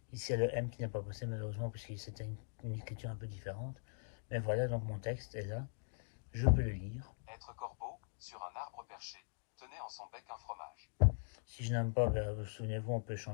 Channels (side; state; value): right; silent; digital silence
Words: Ici, il y a le M qui n'est pas passé malheureusement puisque c'était une écriture un peu différente. Mais voilà, donc mon texte est là. Je peux le lire. Être corbeau, sur un arbre perché, tenait en son bec un fromage. Si je n'aime pas, souvenez-vous, on peut